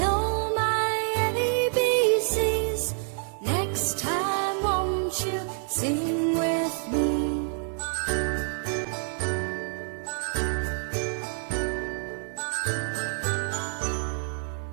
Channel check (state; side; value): silent; left; 60 dB below the other